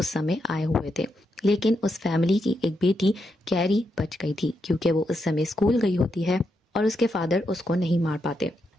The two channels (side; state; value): both; normal; correlation 0.83